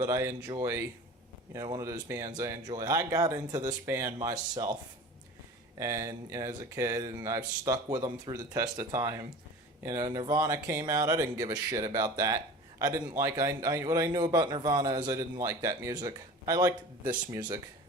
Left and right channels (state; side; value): normal; both; correlation 0.38